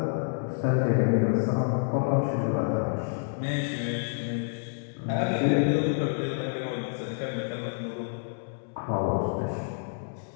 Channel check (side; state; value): right; silent; 59 dB below the other